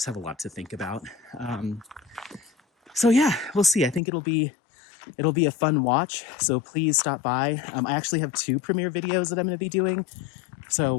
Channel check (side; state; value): right; drops out; at 4.0 s